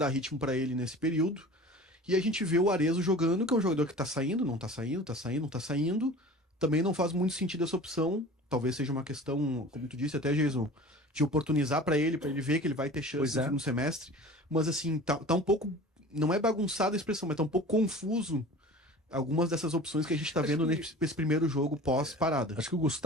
ritmo para ele nesse período. E a gente vê o Arezzo jogando, que é um jogador que tá saindo, não tá saindo, tá saindo, não tá saindo. Também não faz muito sentido essa opção. Talvez seja uma questão, como tu disse até, Jason, de oportunizar para ele ver que ele vai ter chance no segundo semestre. Mas assim, tá um pouco... Não é bagunçada a expressão, mas tá um pouco confuso algumas dessas opções que a gente está vendo nesse primeiro jogo pós-parada. Acho que o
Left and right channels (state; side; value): normal; both; correlation 0.40